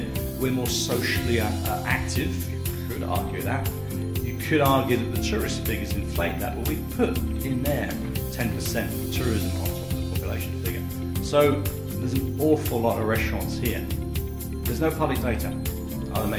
we're more socially active. You could argue that. You could argue that the tourist figures inflate that, but we put in there 10% tourism on top of the population figure. So there's an awful lot of restaurants here. There's no public data. Are they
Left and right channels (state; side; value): identical; both; correlation 1.00